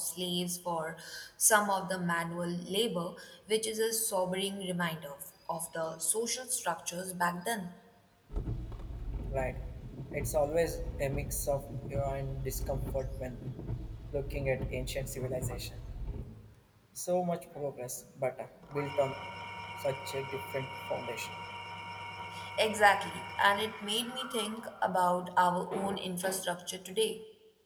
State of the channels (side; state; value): both; identical; correlation 1.00